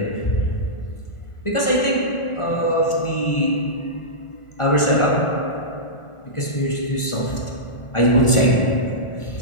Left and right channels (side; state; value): right; late; 1.4 ms